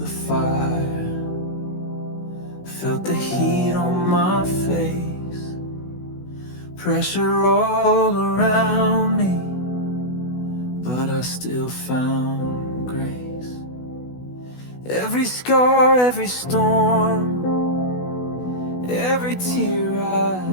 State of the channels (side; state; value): right; late; 16 ms